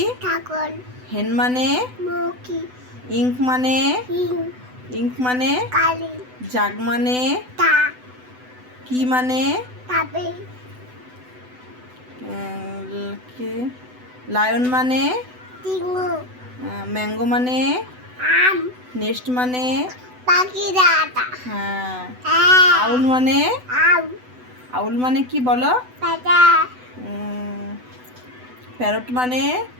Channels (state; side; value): late; left; 8.0 ms